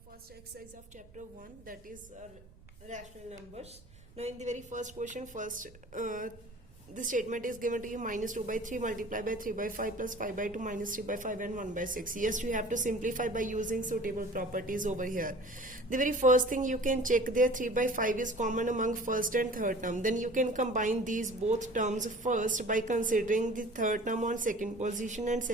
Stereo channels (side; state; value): right; noise; rumble, 22 dB below the sound